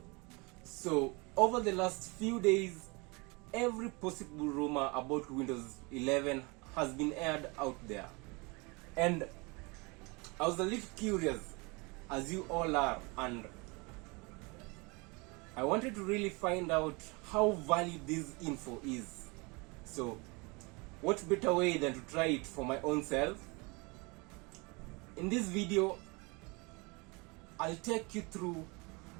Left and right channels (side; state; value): left; quieter; 28.0 dB